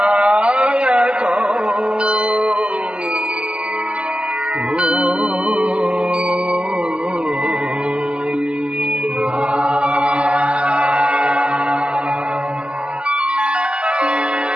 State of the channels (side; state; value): left; late; 0.053 ms